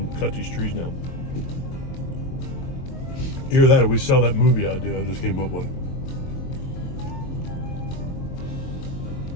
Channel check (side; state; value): right; late; 22 ms